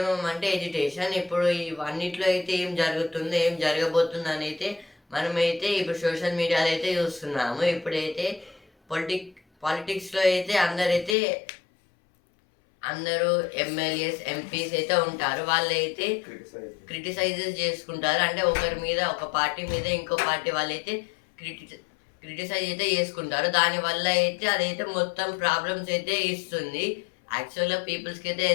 అంటే ఎడ్యుకేషన్. ఇప్పుడు ఇవన్నిట్లో అయితే ఏం జరుగుతుందో, ఏం జరగబోతుంది అని అయితే మనమైతే ఇప్పుడు సోషల్ మీడియాలో అయితే చూస్తున్నాము. ఇప్పుడైతే పాలిటిక్స్లో అయితే అందరూ ఎమ్మెల్యేస్, ఎంపీస్ అయితే ఉంటారు. వాళ్ళు అయితే క్రిటిసైజెస్ చేసుకుంటారు. అంటే ఒకరి మీద, ఒక పార్టీ మీద ఇంకో పార్టీ వాళ్ళైతే క్రిటిసైజ్ అయితే చేసుకుంటారు. దానివల్ల అయితే అదైతే మొత్తం ప్రాబ్లమ్స్ అయితే ఇస్తుంది. యాక్చువల్గా పీపుల్స్కి అయితే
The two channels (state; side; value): drops out; right; at 11.2 s